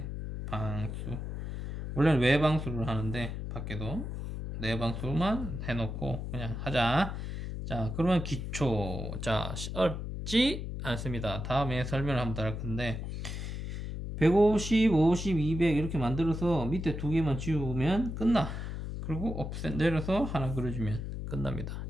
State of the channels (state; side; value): noise; left; hum, 5 dB below the sound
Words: 방수. 원래는 외방수를 하는데 밖에도 내방수만 해놓고 그냥 하자. 자, 그러면 기초. 자, 어렵지 않습니다. 다음에 설명을 한번 더 할 건데 150, 50, 200 이렇게 만들어서 밑에 두 개만 지우면 끝나. 그리고 옵셋 내려서 하나 그려주면 끝납니다.